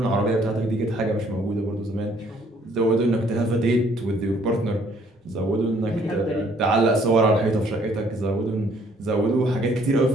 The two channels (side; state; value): both; normal; correlation 0.63